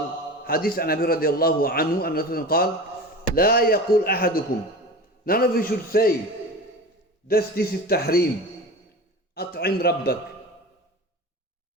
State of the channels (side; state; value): both; normal; correlation 0.32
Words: حديث عن أبي رضي الله عنه أن رسول الله قال لا يقول أحدكم. None of you should say this is tahrim. أطعم ربك.